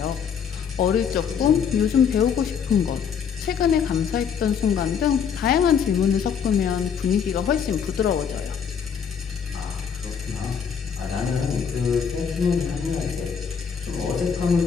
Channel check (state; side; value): quieter; right; 7.1 dB